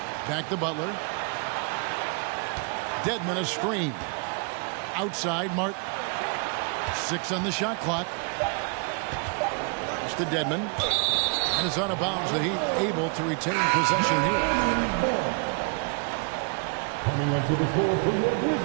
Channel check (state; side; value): quieter; left; 35.3 dB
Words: Back to Butler. Dedmon a screen. Outside Martin. 6 on the shot clock. Just to Dedmon. And it's out of bounds. The Heat able to retain possession here. Coming up to the floor for the